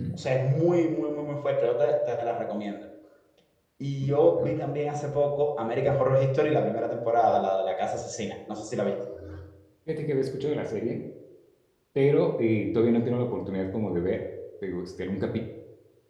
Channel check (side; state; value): both; identical; correlation 1.00